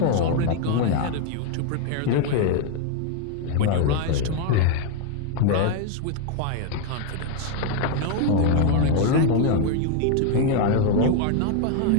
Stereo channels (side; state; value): both; different; correlation 0.00